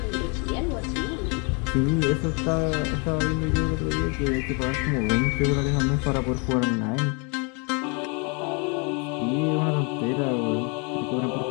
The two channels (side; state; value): right; quieter; 34.0 dB